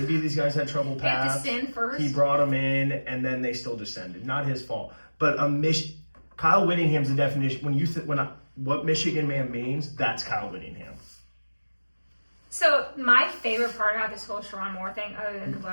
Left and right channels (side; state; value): both; inverted; correlation -1.00